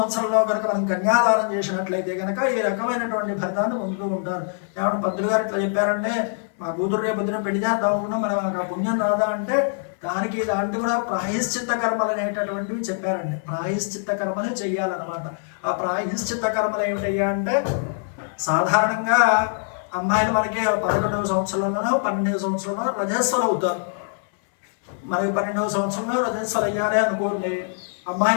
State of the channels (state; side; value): silent; right; 63 dB below the other